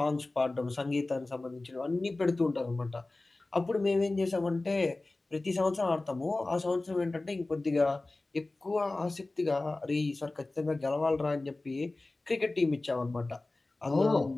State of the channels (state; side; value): quieter; right; 3.0 dB